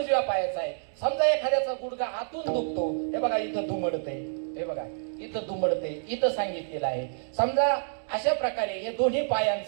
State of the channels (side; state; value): left; silent; digital silence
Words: पायाचं आहे. समजा एखाद्याचा गुडघा आतून दुखतो, हे बघा इथं दुमडते, हे बघा इथं दुमडते, इथं सांगितलेलं आहे. समजा अशा प्रकारे हे दोन्ही